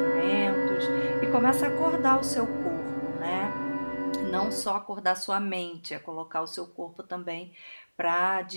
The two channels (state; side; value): inverted; both; correlation -1.00